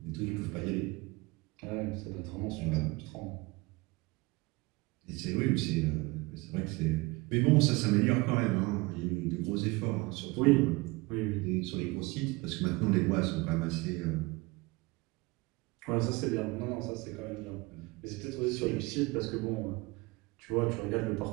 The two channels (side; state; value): left; quieter; 24.3 dB